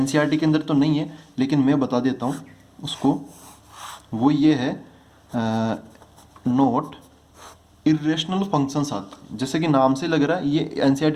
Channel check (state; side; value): identical; both; correlation 1.00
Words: के अंदर तो नहीं है लेकिन मैं बता देता हूँ उसको, वो ये है नोट इरेशनल फंक्शंस आते, जैसे कि नाम से लग रहा है ये